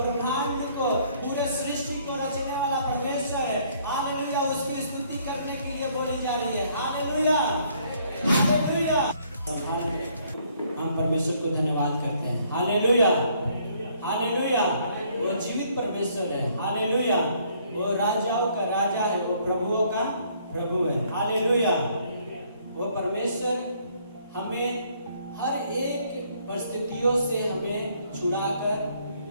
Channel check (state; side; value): inverted; both; correlation -0.65